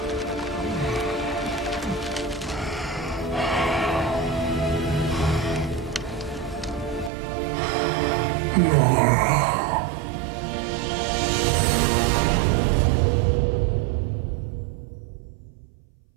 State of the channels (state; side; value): drops out; left; at 7.1 s